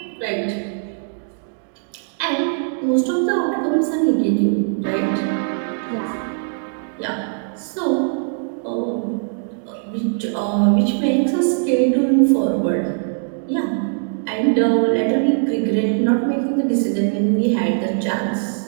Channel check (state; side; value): silent; left; digital silence